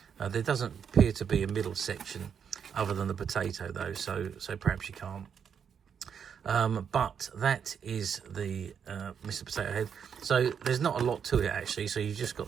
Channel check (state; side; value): quieter; left; 7.4 dB